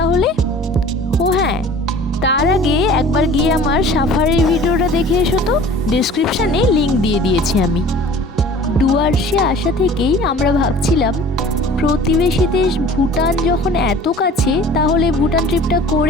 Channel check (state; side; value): normal; both; correlation 0.45